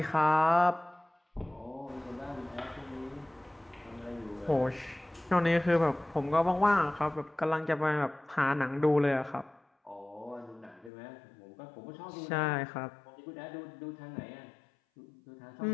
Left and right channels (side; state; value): right; drops out; at 10.9 s